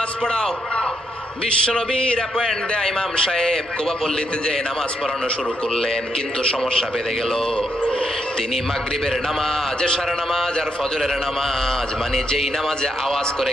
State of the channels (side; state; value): both; normal; correlation 0.79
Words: পড়াও। বিশ্বনবীর অ্যাপয়েন্ট দেয়া ইমাম সাহেব কুবা পল্লীতে যে নামাজ পড়ানো শুরু করলেন, কিন্তু সমস্যা বেড়ে গেল। তিনি মাগরিবের নামাজ, এশার নামাজ আর ফজরের নামাজ, মানে যেই নামাজে আওয়াজ করে